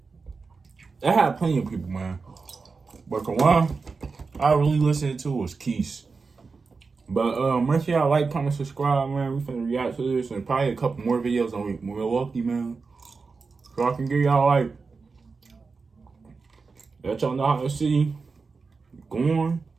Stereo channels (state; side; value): quieter; left; 4.6 dB